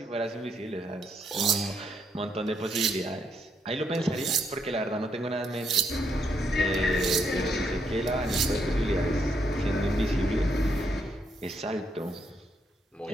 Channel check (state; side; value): normal; both; correlation 0.76